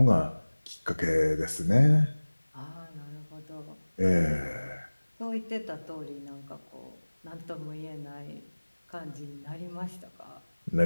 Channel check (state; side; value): inverted; both; correlation -1.00